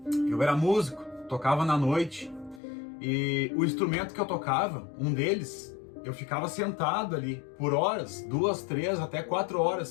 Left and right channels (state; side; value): drops out; right; at 2.6 s